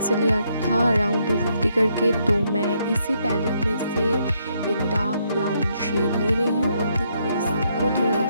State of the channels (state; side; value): inverted; both; correlation -0.75